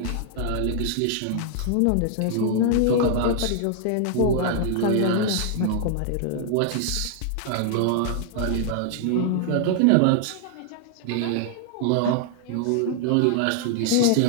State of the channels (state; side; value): different; both; correlation 0.00